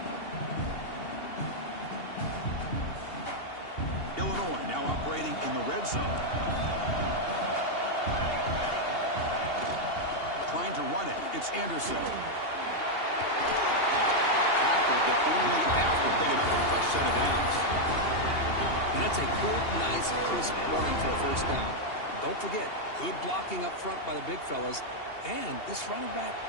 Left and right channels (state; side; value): late; right; 2.8 ms